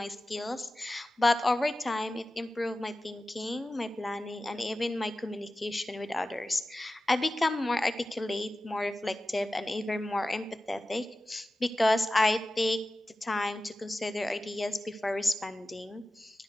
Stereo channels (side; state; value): both; normal; correlation 0.94